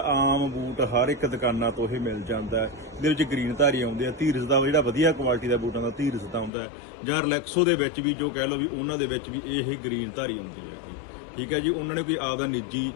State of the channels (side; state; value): right; drops out; at 6.5 s